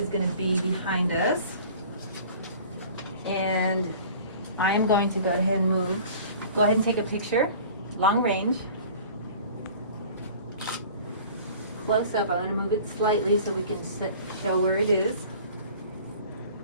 going to be behind us. And I'm going to go ahead and take a picture, long range. Close up, I want to move it slightly so we can show where it is.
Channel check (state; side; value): inverted; both; correlation -0.46